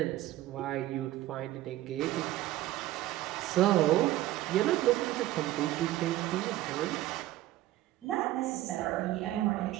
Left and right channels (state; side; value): quieter; left; 15.2 dB